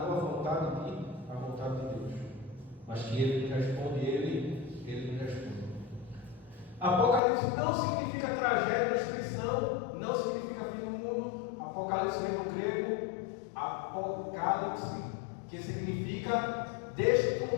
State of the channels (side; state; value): right; drops out; at 7.2 s